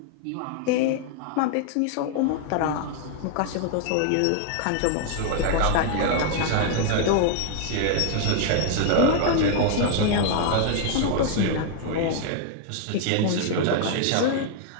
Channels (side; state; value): both; different; correlation 0.00